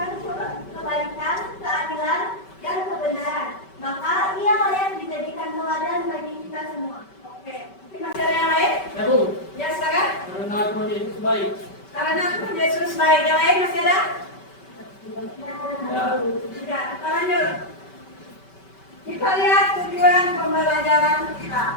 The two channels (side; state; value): right; late; 5.2 ms